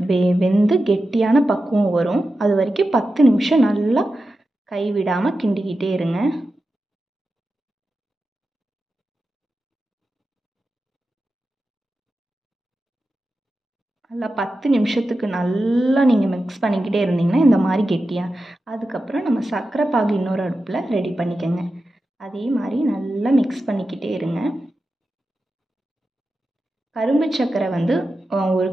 வெந்து கெட்டியான பக்குவம் வரும். அது வரைக்கும் 10 நிமிஷம் நல்லா கைவிடாமல் கிண்டிக்கிட்டே இருங்க. நல்லா 10 நிமிஷத்துக்கு நல்லா நீங்கள் மிக்ஸ் பண்ணிக்கிட்டே இருந்தீங்கன்னா இந்த மாதிரி கெட்டியாக, அதுக்கப்புறம் நம்ம சர்க்கரை பாகு இன்னொரு அடுப்பில் ரெடி பண்ணிக்கோங்க. அதே மாதிரி நல்லா மிக்ஸ் பண்ணிக்கிட்டே இருங்க. கரும்பு சர்க்கரை 1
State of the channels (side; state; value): both; normal; correlation 0.92